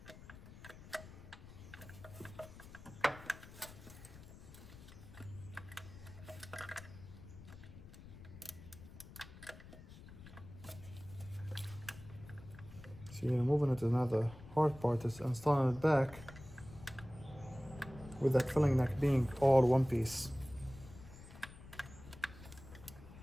See, removing it is not the hard part, is installing it back with that filling neck being all one piece.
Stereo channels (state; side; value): noise; left; rumble, 16 dB below the sound